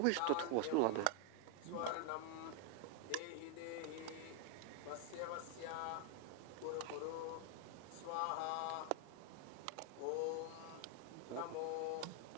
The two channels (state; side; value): different; both; correlation 0.00